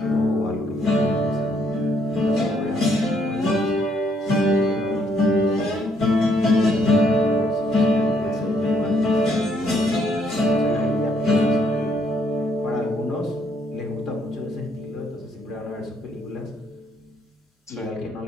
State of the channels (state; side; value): normal; both; correlation 0.70